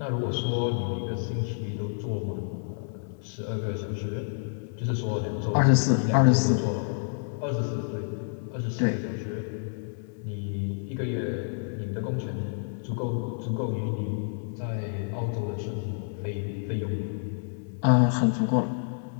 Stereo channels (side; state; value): right; silent; 59 dB below the other